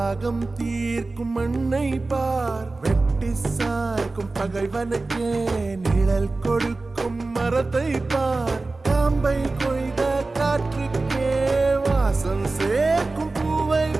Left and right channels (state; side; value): quieter; left; 3.4 dB